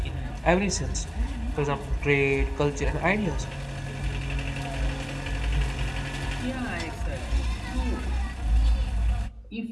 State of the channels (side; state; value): both; identical; correlation 1.00